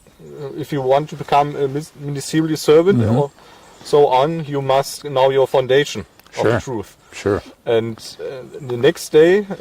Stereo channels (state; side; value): identical; both; correlation 1.00